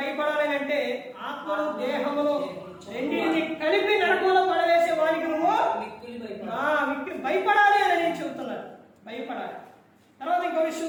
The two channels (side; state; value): both; identical; correlation 1.00